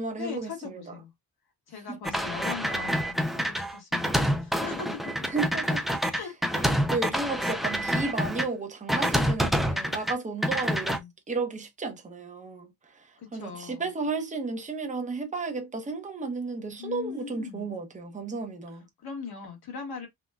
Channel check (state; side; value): normal; both; correlation 0.66